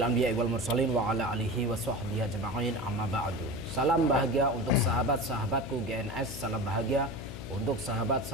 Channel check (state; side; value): noise; left; hum, 10 dB below the sound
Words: anbiya'i wal mursalin wa ala alihi wa sahbihi ajma'in, amma ba'du. Salam bahagia untuk sahabat-sahabatku GNS, salam bahagia untuk